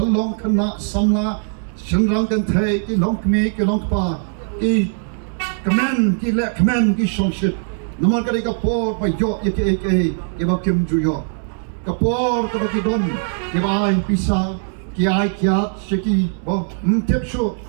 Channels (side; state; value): left; silent; 66 dB below the other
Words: kana samla shenrang kan thai ki long kme ki long pa ki kamen ki le kamen ki songshit. Namar kadeka port ba yo ye ke ba kim ju yo. Kapor ka baki don ke bai pisa ki ai kya shiki bo mtep sho